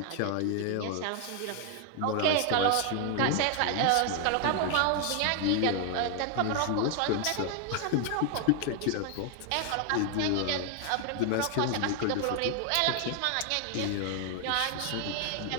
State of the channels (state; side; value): different; both; correlation 0.00